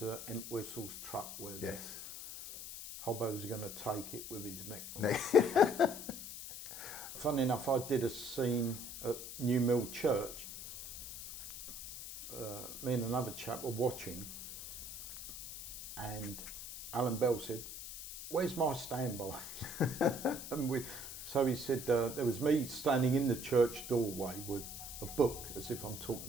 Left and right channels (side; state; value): left; noise; hiss, 10 dB below the sound